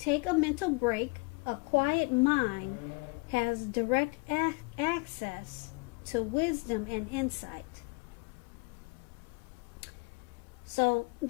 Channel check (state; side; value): quieter; right; 30.7 dB